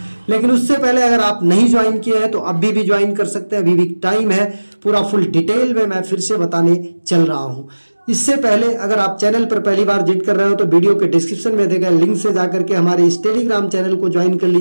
लेकिन उससे पहले अगर आप नहीं ज्वाइन किए हैं तो अभी भी ज्वाइन कर सकते हैं, अभी भी टाइम है। पूरा फुल डिटेल में मैं फिर से बताने चल रहा हूं। इससे पहले अगर आप चैनल पर पहली बार विजिट कर रहे हो तो वीडियो के डिस्क्रिप्शन में दिए गए लिंक से जाकर के हमारे इस टेलीग्राम चैनल को ज्वाइन कर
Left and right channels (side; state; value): both; inverted; correlation -1.00